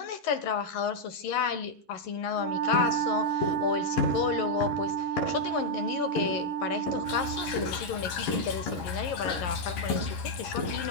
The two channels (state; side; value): late; right; 11 ms